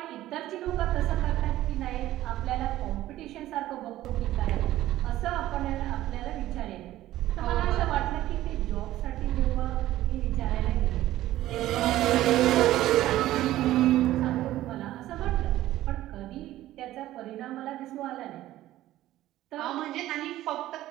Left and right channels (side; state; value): left; quieter; 14.7 dB